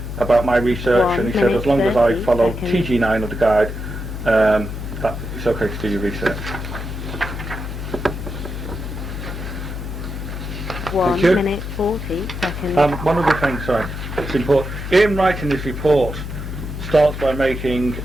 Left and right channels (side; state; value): left; noise; hum, 7 dB below the sound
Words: about my research, and he said as long as I follow TG9 of the guide, that it's okay to do your research. 1 minute 40 seconds. One other thing, sorry, it's important. In writing this report starts by making